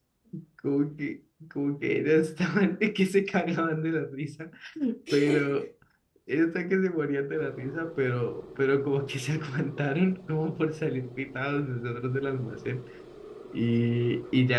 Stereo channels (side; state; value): both; identical; correlation 1.00